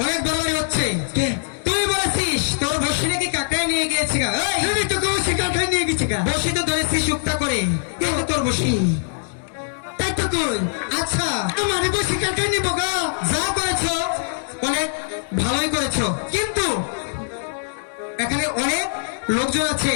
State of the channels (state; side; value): silent; right; digital silence